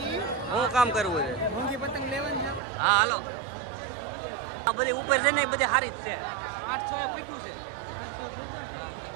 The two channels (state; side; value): drops out; left; at 2.6 s